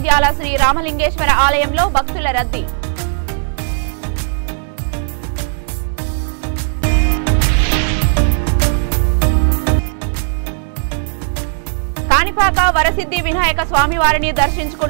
శ్రీ రామలింగేశ్వర ఆలయంలో భక్తుల రద్దీ కాణిపాక వరసిద్ధి వినాయక స్వామివారిని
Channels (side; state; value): left; silent; 64 dB below the other